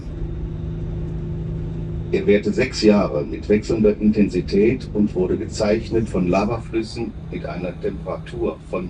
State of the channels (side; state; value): both; identical; correlation 1.00